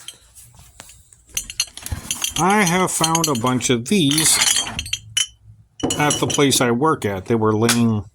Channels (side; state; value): both; identical; correlation 1.00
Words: I have found a bunch of these at the place I work at. They were laying